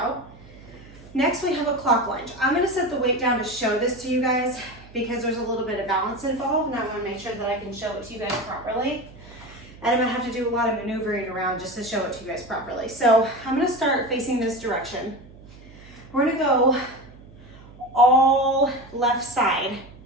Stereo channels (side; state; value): right; noise; hum, 21 dB below the sound